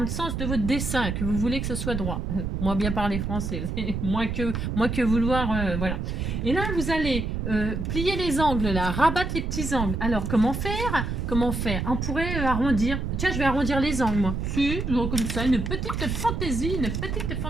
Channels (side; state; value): right; noise; rumble, 2 dB below the sound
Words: sens de votre dessin, que vous voulez que ce soit droit. Moi bien parler français, moins que vouloir, voilà. Et là, vous allez plier les angles là, rabattre les petits angles. Alors comment faire? Comment faire? On pourrait arrondir. Tiens, je vais arrondir les angles moi. Si, comme ça, une petite fantaisie, une petite